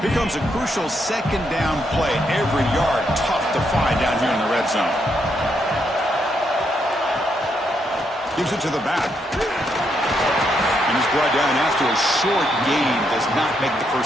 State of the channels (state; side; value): normal; both; correlation 0.78